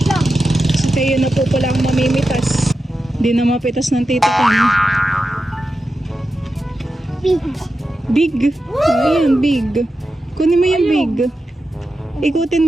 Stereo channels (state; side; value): normal; both; correlation 0.90